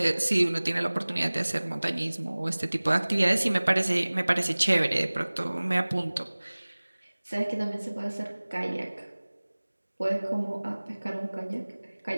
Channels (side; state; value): both; inverted; correlation -1.00